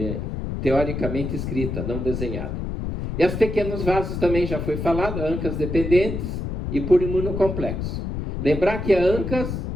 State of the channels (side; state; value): left; noise; rumble, 4 dB below the sound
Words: teoricamente escrita, não desenhada. E as pequenos vasos também já foi falado, ANCAs dependentes e por imunocomplexo. Lembrar que a ANCAs,